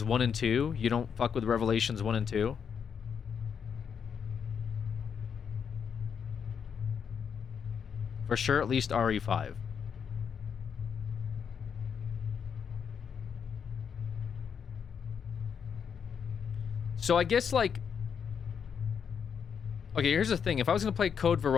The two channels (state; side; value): quieter; right; 7.1 dB